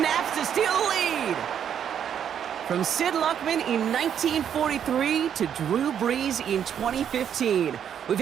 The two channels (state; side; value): quieter; left; 8.8 dB